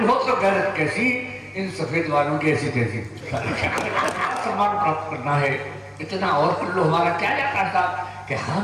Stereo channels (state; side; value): identical; both; correlation 1.00